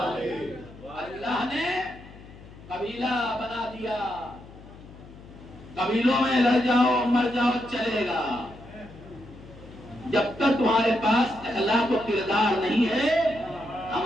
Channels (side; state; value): left; noise; hum, 19 dB below the sound